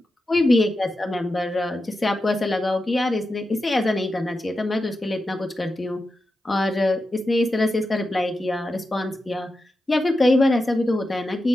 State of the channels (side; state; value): both; normal; correlation 0.90